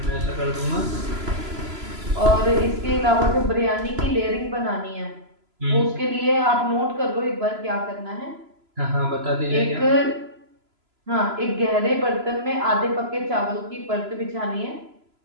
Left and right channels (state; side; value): late; left; 3.0 ms